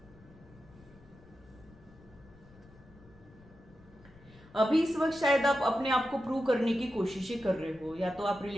अभी इस वक्त शायद आप अपने आप को प्रूव करने की कोशिशें कर रहे हो, या तो आप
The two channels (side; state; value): left; noise; rumble, 24 dB below the sound